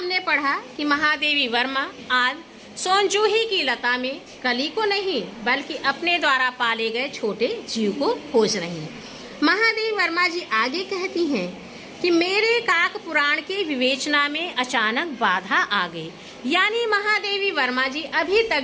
पढ़ा कि महादेवी वर्मा आज सोनजूही की लता में कली को नहीं बल्कि अपने द्वारा पाले गए छोटे जीव को खोज रही हैं। महादेवी वर्मा जी आगे कहती हैं कि मेरे काक पुराण के विवेचना में अचानक बाधा आ गई। यानी महादेवी वर्मा जी अभी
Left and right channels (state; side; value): identical; both; correlation 1.00